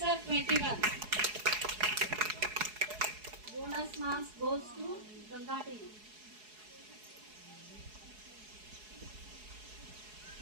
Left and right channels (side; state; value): left; late; 4.7 ms